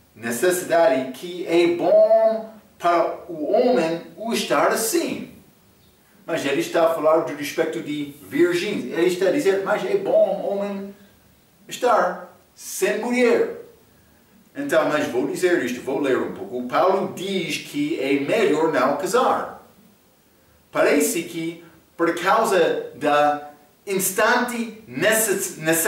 necessidade, que é bom para o homem o estar assim. Mas ele está a falar do respeito de virgens. Ele está a dizer, mas é bom o homem estar sem mulher. Então, mas vou dizer isto, vou ler um pouco. O Paulo diz que é melhor não casar. Parece que, por causa da instante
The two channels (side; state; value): both; identical; correlation 1.00